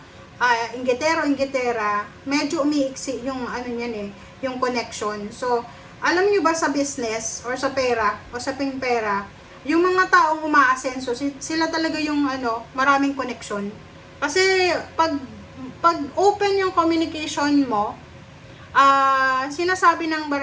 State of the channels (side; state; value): both; identical; correlation 1.00